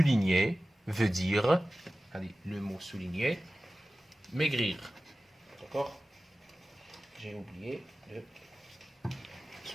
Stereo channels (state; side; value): normal; both; correlation 0.96